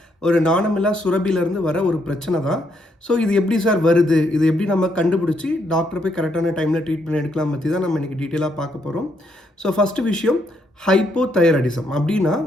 ஒரு நாணமில்லா சுரபியிலேருந்து வர ஒரு பிரச்சனை தான். ஸோ இது எப்படி சார் வருது, இது எப்படி நம்ம கண்டுபிடிச்சி டாக்டர் போய் கரெக்டான டைமில் ட்ரீட்மெண்ட் எடுக்கலாம் பற்றி தான் நம்ம இன்றைக்கி டீட்டெயிலாக பார்க்க போகிறோம். ஸோ ஃபஸ்ட்டு விஷயம், ஹைப்போதைராய்டிசம் அப்படின்னா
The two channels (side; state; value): both; normal; correlation 0.75